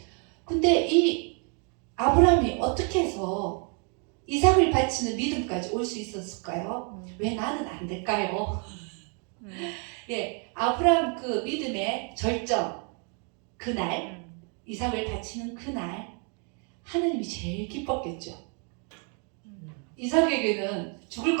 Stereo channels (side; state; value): left; quieter; 38.2 dB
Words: 근데 이 아브라함이 어떻게 해서 이삭을 바치는 믿음까지 올 수 있었을까요? 왜 나는 안 될까요? 예, 아브라함 그 믿음의 절정, 그날, 이삭을 바치는 그날, 하나님이 제일 기뻤겠죠. 이삭에게는 죽을